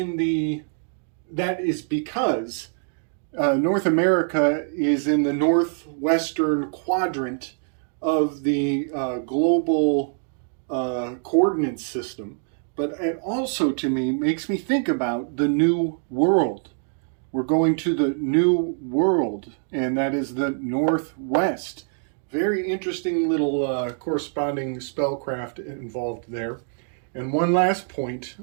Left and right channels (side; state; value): left; silent; 62 dB below the other